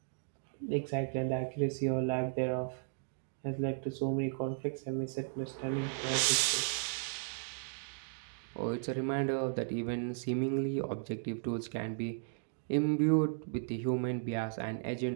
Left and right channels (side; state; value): left; silent; digital silence